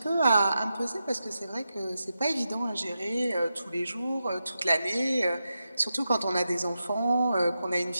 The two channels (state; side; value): inverted; both; correlation -0.89